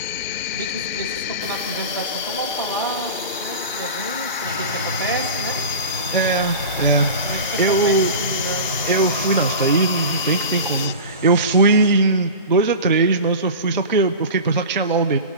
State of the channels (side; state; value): both; inverted; correlation -0.30